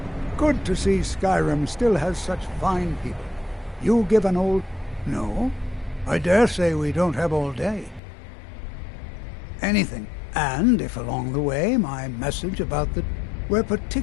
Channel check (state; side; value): drops out; right; at 8.0 s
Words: Good to see Skyrim still has such fine people. You give an old... No, I dare say we don't have all day. Anything. And if along the way my message about the... We're